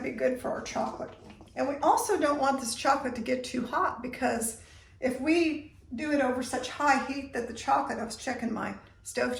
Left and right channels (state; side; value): identical; both; correlation 1.00